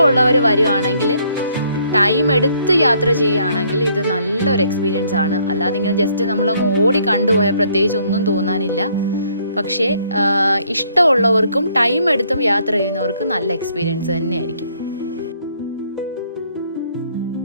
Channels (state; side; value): inverted; both; correlation -0.66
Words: വരുവാണെങ്കിൽ, ടൈം എടുത്ത് യാത്ര ചെയ്യുകയാണെങ്കിൽ ഇത് നല്ലൊരു എക്സ്പീരിയൻസ് ആണ്. അല്ലാതെ ഇങ്ങനെ ജസ്റ്റ് നമ്മളങ്ങ് ഓടി കണ്ടുപോയാൽ പ്രത്യേകിച്ച് ഒന്നും തോന്നാനില്ല. പക്ഷേ ഇഷ്ടമുള്ളവർക്കും ടൈം എടുത്തും യാത്ര ചെയ്യുന്നവർക്കും നല്ല എക്സ്പീരിയൻസ് തന്നെയായിരിക്കും.